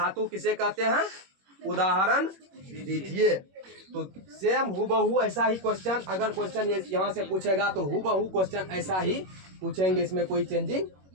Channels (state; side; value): late; left; 21 ms